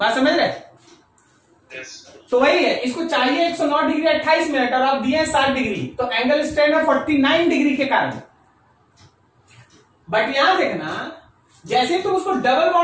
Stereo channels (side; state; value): both; identical; correlation 1.00